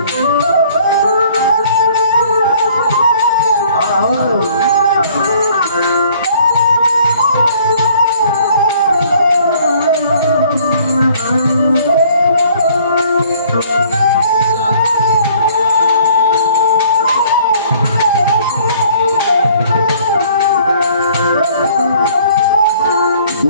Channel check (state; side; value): inverted; both; correlation -0.57